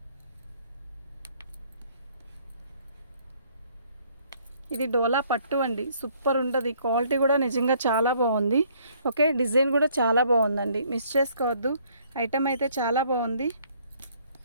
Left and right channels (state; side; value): inverted; both; correlation -0.63